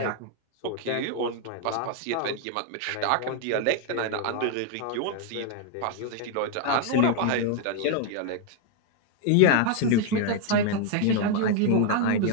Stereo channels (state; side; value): different; both; correlation 0.01